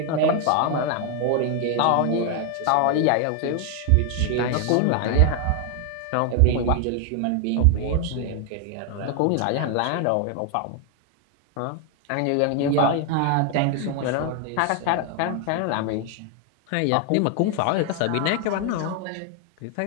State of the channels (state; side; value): different; both; correlation 0.00